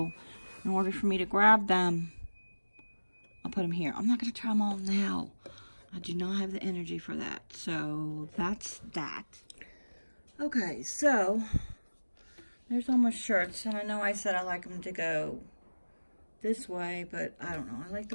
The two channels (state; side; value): inverted; both; correlation -1.00